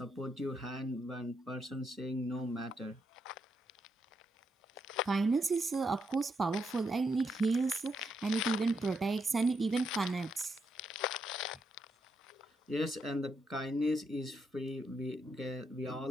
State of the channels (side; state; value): both; normal; correlation 0.80